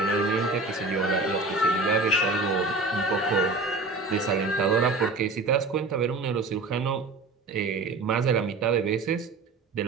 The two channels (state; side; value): quieter; left; 3.4 dB